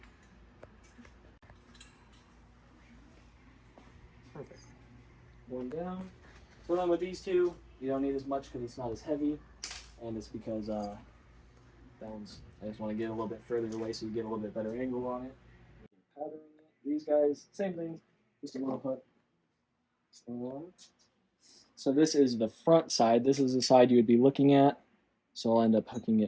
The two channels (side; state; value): both; identical; correlation 1.00